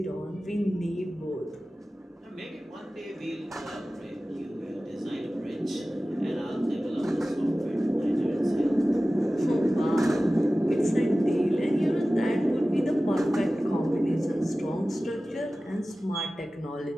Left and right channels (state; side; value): normal; both; correlation 0.96